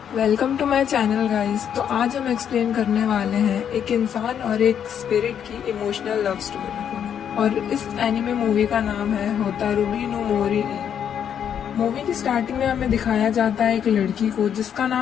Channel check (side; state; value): right; quieter; 8.7 dB